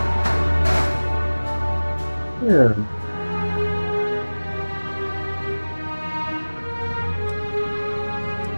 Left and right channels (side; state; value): both; inverted; correlation -1.00